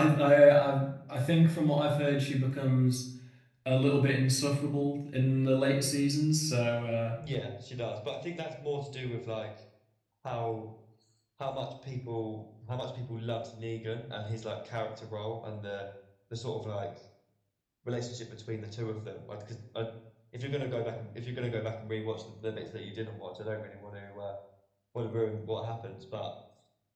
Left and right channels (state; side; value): identical; both; correlation 1.00